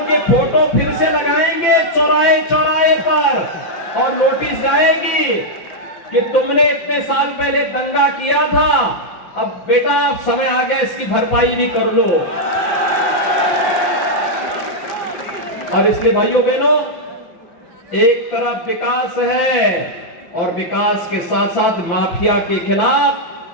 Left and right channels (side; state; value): right; late; 5.9 ms